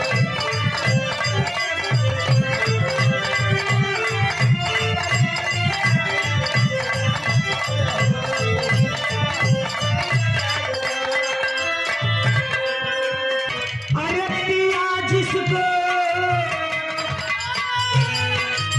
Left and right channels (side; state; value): both; identical; correlation 1.00